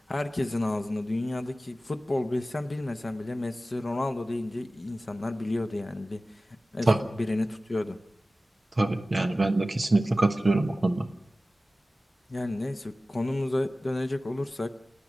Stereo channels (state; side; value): normal; both; correlation 0.96